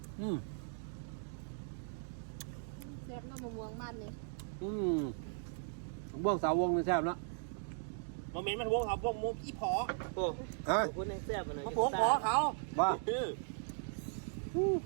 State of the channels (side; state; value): left; silent; digital silence